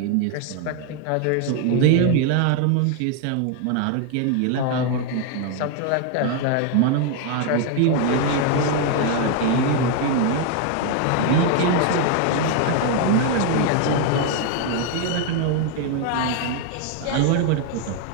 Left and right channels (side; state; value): both; different; correlation 0.01